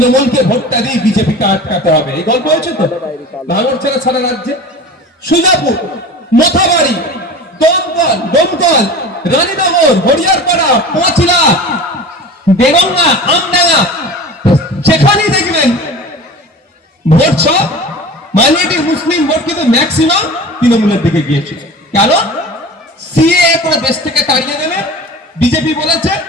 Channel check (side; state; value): both; normal; correlation 0.36